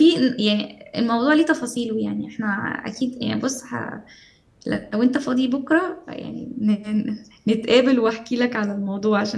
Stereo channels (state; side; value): identical; both; correlation 1.00